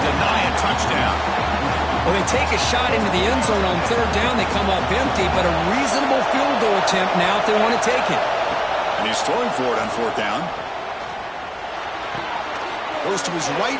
deny a touchdown. Well, they take a shot into the end zone on 3rd down. They come up empty, but a reasonable field goal attempt now if they want to take it. And he's throwing for it on 4th down. Goes to his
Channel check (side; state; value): both; identical; correlation 1.00